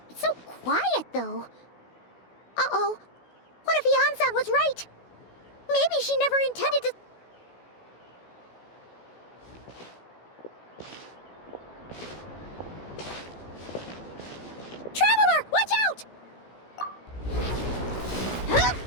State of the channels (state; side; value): late; right; 16 ms